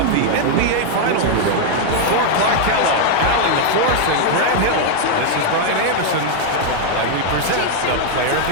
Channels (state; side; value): different; both; correlation 0.00